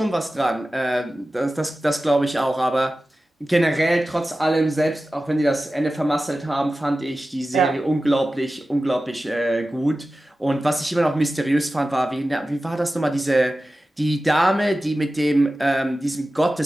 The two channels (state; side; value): normal; both; correlation 0.95